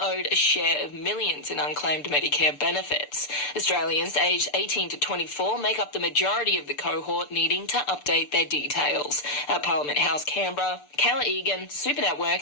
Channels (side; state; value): right; late; 6.8 ms